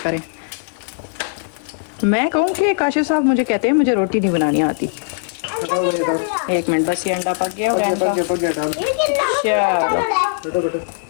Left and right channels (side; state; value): right; silent; 64 dB below the other